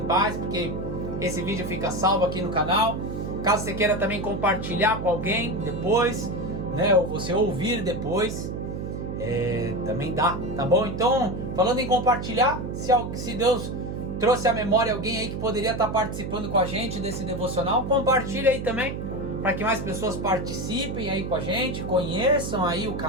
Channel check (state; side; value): noise; right; hum, 5 dB below the sound